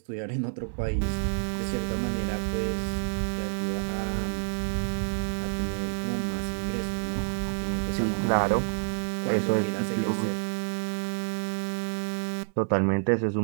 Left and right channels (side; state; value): left; silent; 59 dB below the other